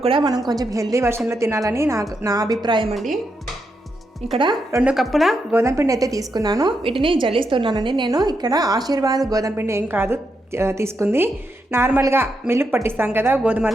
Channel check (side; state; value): both; normal; correlation 0.83